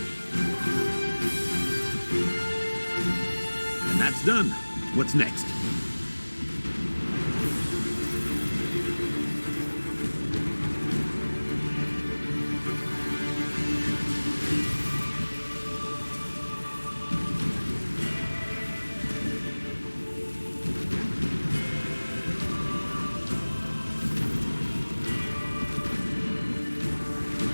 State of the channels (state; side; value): inverted; both; correlation -1.00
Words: And that's done. What's next?